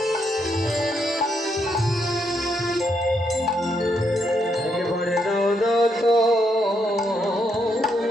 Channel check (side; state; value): both; normal; correlation 0.77